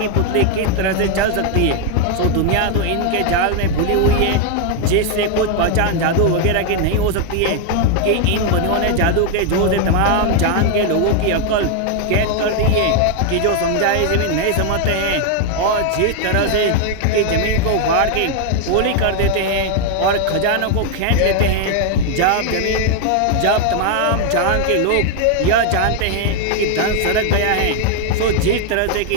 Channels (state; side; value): different; both; correlation 0.01